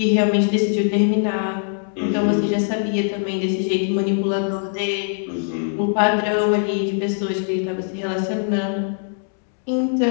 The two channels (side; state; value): right; silent; digital silence